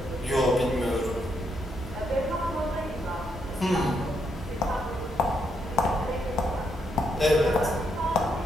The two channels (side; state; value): both; normal; correlation 0.77